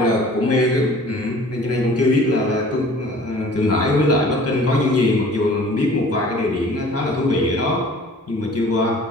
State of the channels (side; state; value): both; normal; correlation 0.48